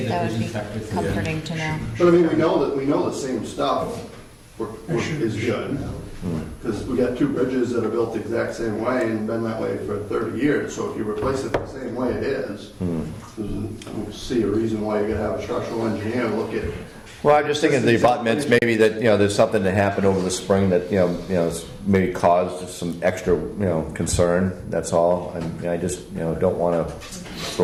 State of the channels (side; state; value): both; identical; correlation 1.00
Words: the that would vision be inspector- comforting to know. But I mean, we know the same stuff is good. Because we got 2 bridges that are built the exact same way and been that way for 30 years. So if you replace it the same way it is, I don't see a reason why you gotta have a structural engineer look at. Well, I'm just thinking the abutments, maybe that, you know, there's something that happened over the spring that, you know, maybe caused some extra, you know, concern, that's all. And I just, you know, don't want to